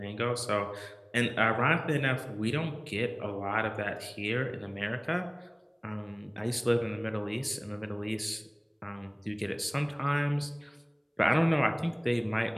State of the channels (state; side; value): identical; both; correlation 1.00